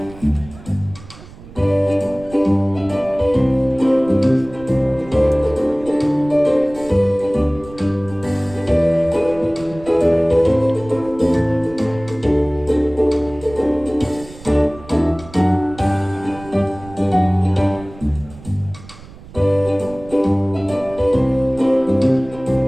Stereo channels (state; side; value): noise; right; rumble, 19 dB below the sound